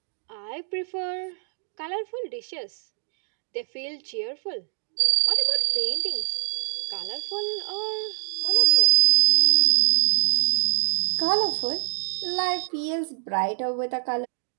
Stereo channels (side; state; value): left; silent; digital silence